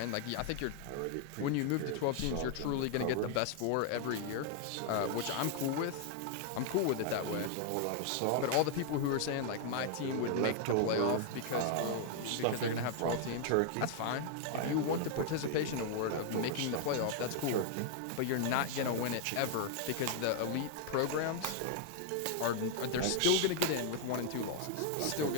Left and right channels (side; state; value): both; different; correlation 0.00